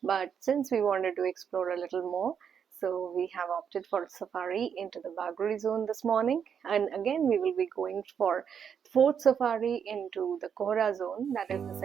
But since we wanted to explore a little more, so we have opted for safari into the Bagori zone this morning, and again we will be going for fourth safari into the Kora zone, that is the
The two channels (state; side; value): quieter; left; 7.6 dB